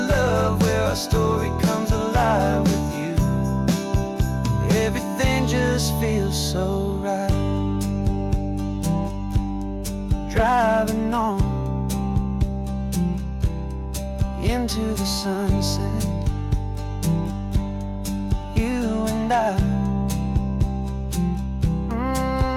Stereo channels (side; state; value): both; identical; correlation 1.00